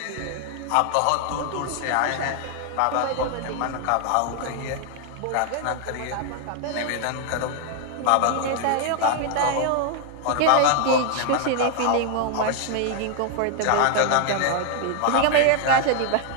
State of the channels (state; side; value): different; both; correlation 0.00